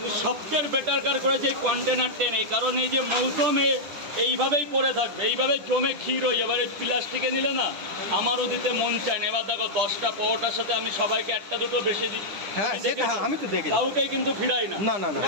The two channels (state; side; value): late; left; 9.9 ms